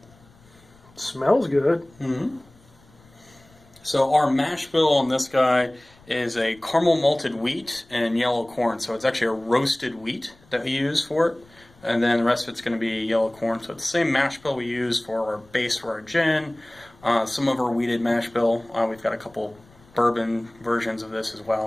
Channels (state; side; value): noise; left; rumble, 28 dB below the sound